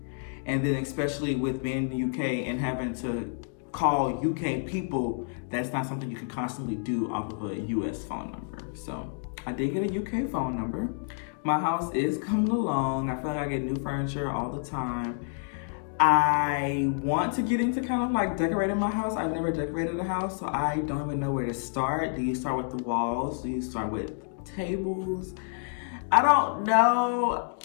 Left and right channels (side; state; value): right; silent; 59 dB below the other